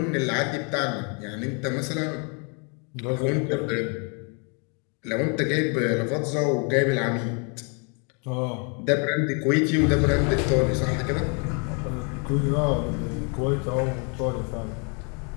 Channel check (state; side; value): quieter; right; 36.3 dB